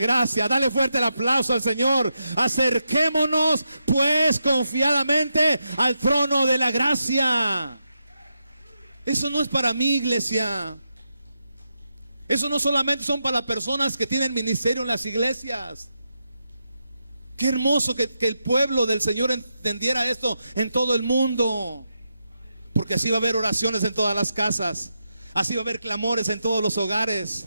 Dale fuerte el aplauso al Señor. Acerquémonos pues confiadamente al trono de la gracia. Eso no es para mí, iglesia. Eso no solamente son para las personas que tienen ministerio en las iglesias. Qué hermoso que el pueblo del Señor entendiera esto en todo el mundo. Porque así va a haber oraciones en todas las casas. Así va a haber clamores en todos los hogares.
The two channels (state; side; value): inverted; both; correlation -0.86